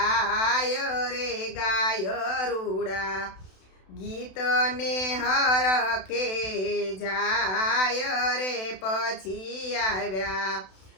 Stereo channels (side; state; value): right; late; 32 ms